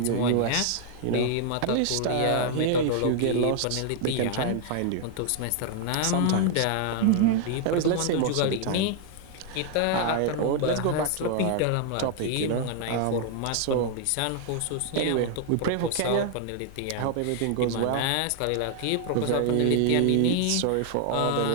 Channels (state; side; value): different; both; correlation 0.00